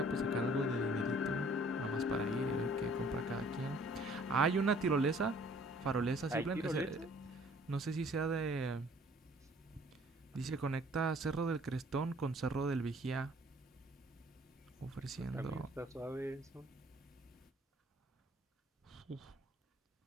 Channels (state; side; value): normal; both; correlation 0.56